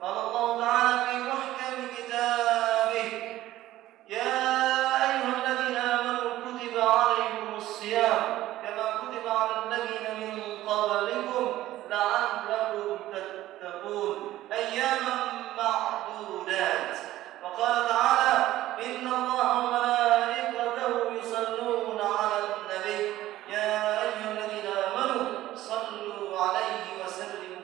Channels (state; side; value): quieter; left; 15.0 dB